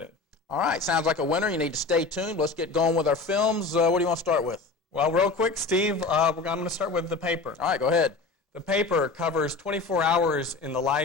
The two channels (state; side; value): quieter; right; 3.9 dB